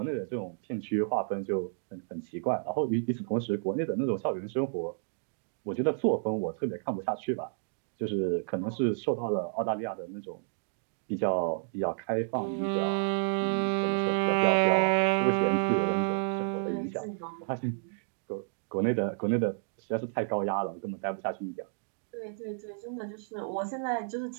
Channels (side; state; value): left; silent; digital silence